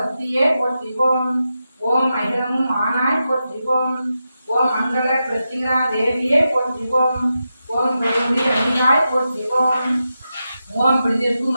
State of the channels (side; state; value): both; inverted; correlation -0.89